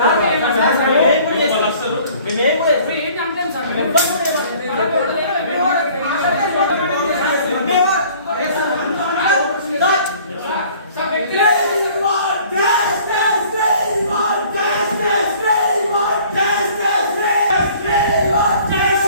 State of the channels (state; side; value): inverted; both; correlation -0.52